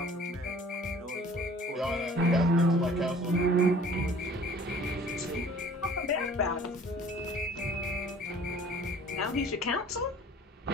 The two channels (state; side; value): normal; both; correlation 0.50